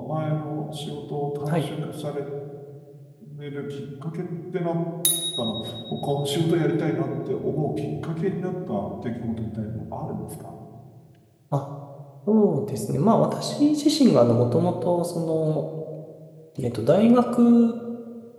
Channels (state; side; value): identical; both; correlation 1.00